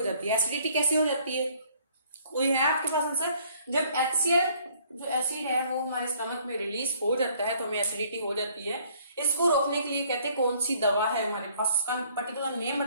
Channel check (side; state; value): both; inverted; correlation -0.60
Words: जाती है। एसिडिटी कैसे हो जाती है, कोई है आपके पास आंसर? जब HCl जो एसिड है वो हमारे स्टमक में रिलीज हो जाता है तो हमें एसिडिटी हो जाती है। इसको रोकने के लिए कहते हैं कौन सी दवा है हमारे पास, उसका पर्टिकुलर नेम